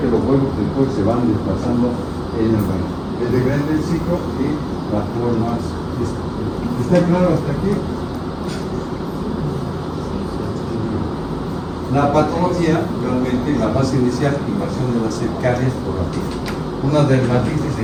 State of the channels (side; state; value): both; identical; correlation 1.00